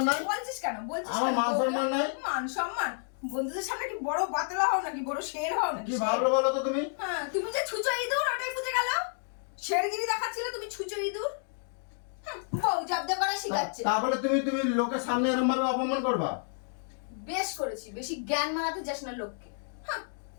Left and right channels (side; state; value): right; silent; 58 dB below the other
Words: নাই? বলছিস কেন? বলছিস আমার কেন? মান সম্মান নাই? মান সম্মান? বন্ধুদের সামনে কি বড় বাতলা হও নাকি, বড় শের হও নাকি? কি ভাবলো বলো তো তুমি? হ্যাঁ তুমি যে ছুঁচো ইঁদুর, ওটাই বুঝে গেল। শেরগিরি দেখাচ্ছিলে, তুমি ছুঁচো ইঁদুর। বউ জব্দ করা শিখাচ্ছে। তারপরে তুমি তুমি লোকের সামনে এরকম ভাবে অপমান করবা? বেশ করেছি, বেশি জ্ঞান মারাতে যাস না লোককে। হ্যাঁ,